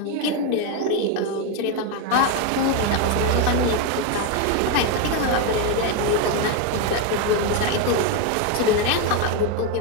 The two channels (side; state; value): both; different; correlation 0.02